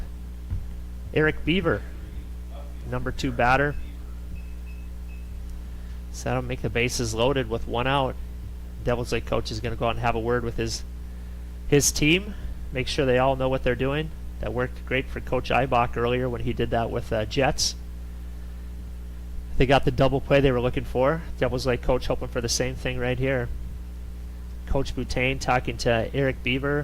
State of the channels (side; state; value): both; identical; correlation 1.00